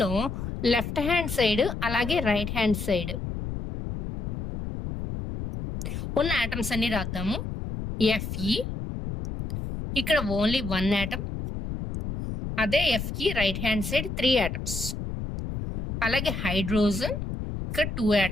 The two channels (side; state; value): left; noise; rumble, 5 dB below the sound